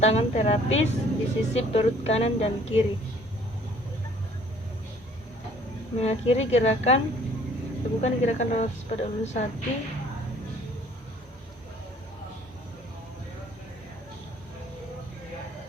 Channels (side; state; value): both; normal; correlation 0.57